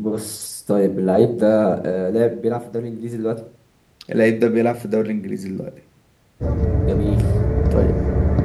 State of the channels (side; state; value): both; identical; correlation 1.00